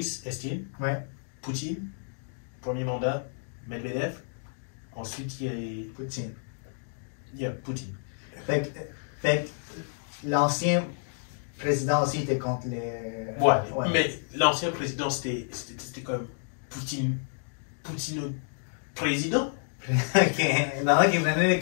Eltsine, Ouais. Poutine, premier mandat, Medvedev. Ensuite, Poutine. il y a Poutine. Fait que l'ancien président aussi était contre les. Ouais. Mais l'ancien président, c'était comme Poutine président. Ok. Maintenant qu'il venait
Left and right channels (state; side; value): silent; right; digital silence